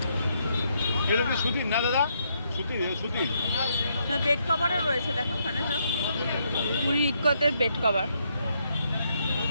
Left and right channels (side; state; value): both; inverted; correlation -0.75